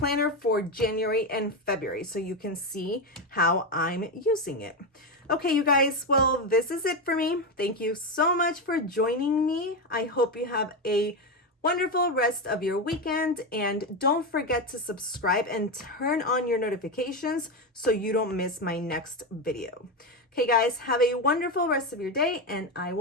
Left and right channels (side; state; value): both; normal; correlation 0.12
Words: for January and February, so you can see how I'm using it. Okay, you guys, well, this is it for me. Thank you so much for joining me. I hope you have a wonderful rest of your weekend, and don't forget to subscribe and turn on your notifications so you don't miss my next video. Okay, guys, have a wonderful rest of your day, and I